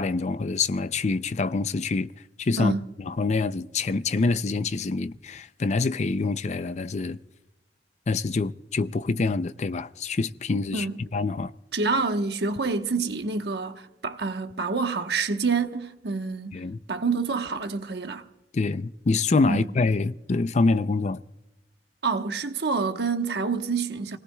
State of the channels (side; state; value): both; normal; correlation 0.52